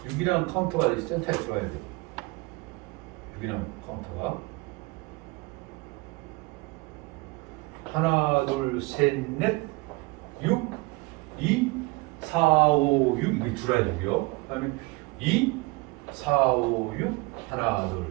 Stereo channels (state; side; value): quieter; left; 24.3 dB